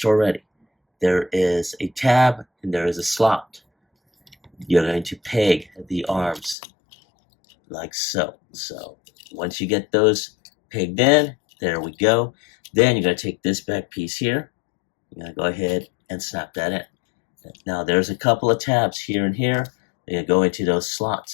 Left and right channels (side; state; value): right; drops out; at 6.6 s